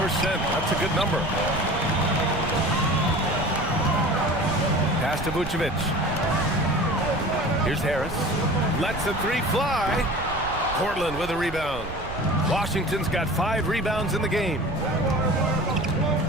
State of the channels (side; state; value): right; noise; rumble, 11 dB below the sound